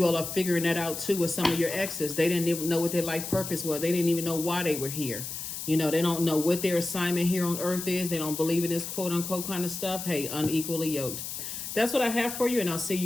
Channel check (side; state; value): left; noise; hiss, 7 dB below the sound